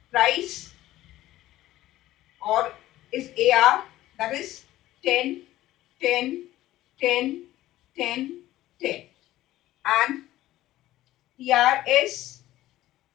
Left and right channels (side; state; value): right; quieter; 15.3 dB